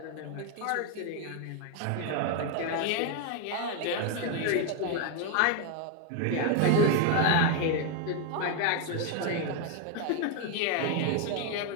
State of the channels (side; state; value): both; different; correlation 0.01